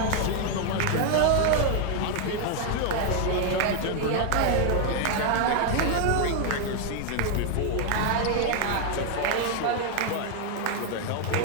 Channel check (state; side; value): different; both; correlation 0.00